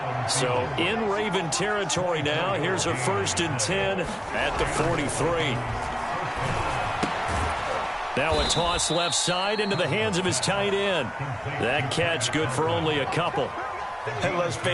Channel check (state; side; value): identical; both; correlation 1.00